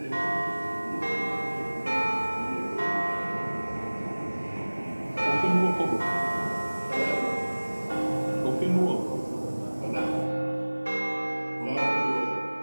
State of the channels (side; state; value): both; inverted; correlation -1.00